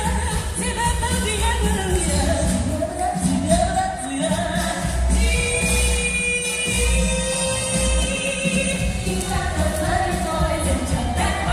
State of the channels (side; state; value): both; identical; correlation 1.00